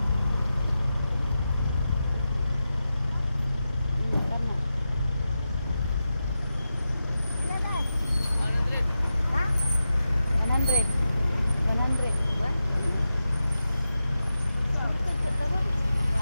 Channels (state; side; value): inverted; both; correlation -0.91